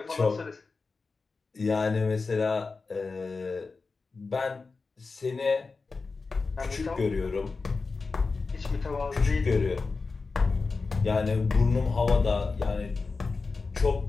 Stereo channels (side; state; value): right; quieter; 4.2 dB